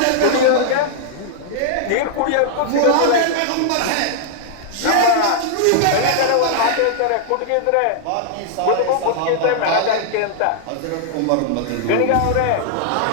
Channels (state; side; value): different; both; correlation -0.01